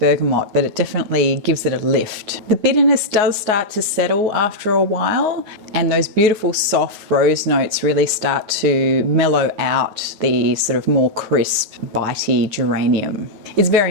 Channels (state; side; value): late; left; 9.5 ms